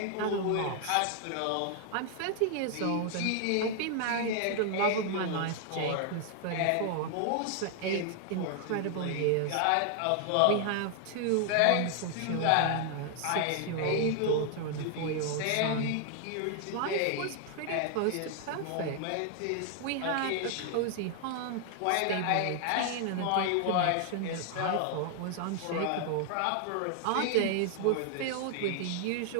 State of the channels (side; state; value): both; different; correlation 0.00